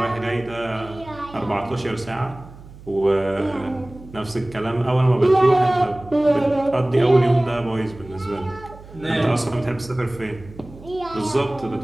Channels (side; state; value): right; noise; hum, 19 dB below the sound